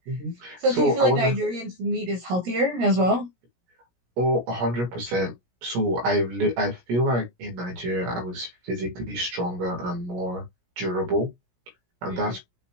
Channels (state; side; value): late; left; 17 ms